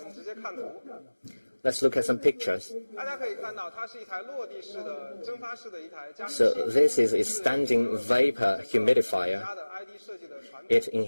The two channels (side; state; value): both; inverted; correlation -1.00